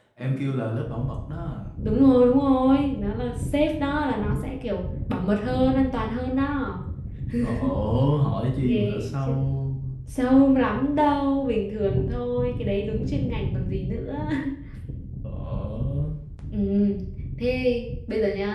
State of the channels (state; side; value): identical; both; correlation 1.00